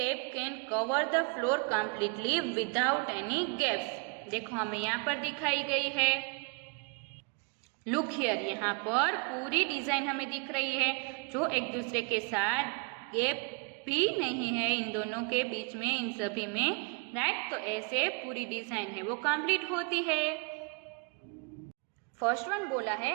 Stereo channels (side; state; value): left; quieter; 33.2 dB